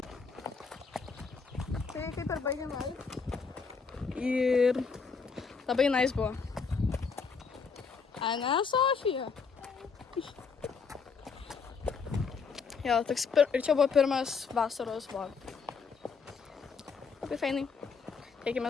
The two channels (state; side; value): quieter; right; 5.3 dB